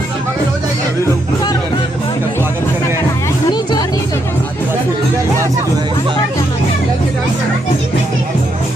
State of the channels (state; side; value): normal; both; correlation 0.78